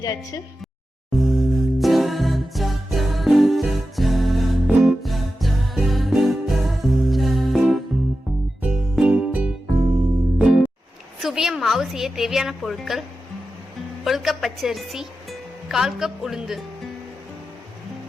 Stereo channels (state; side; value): normal; both; correlation 0.92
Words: சுவியம் மாவு செய்ய தேவையான பொருட்கள்: 1 கப் பச்சரிசி, 1/4 கப் உளுந்து.